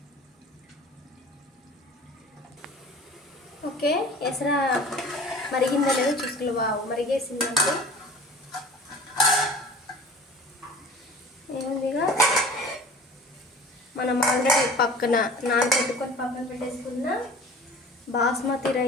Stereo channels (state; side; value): normal; both; correlation 0.42